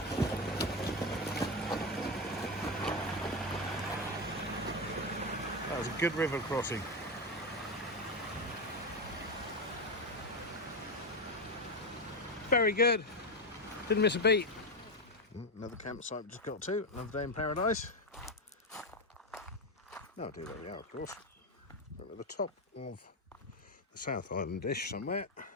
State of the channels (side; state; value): both; normal; correlation 0.12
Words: That was a good river crossing. Very good. Didn't miss a beat. Another campsite we just got to. Another day in paradise. No idea where we are, of course. We're at the top of the South Island dish somewhere.